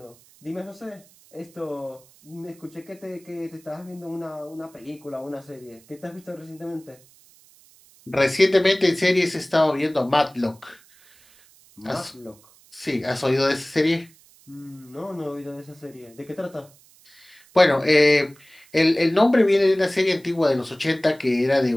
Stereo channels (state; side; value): noise; right; hiss, 28 dB below the sound